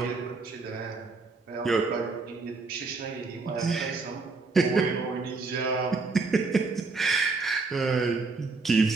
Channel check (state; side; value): quieter; left; 4.0 dB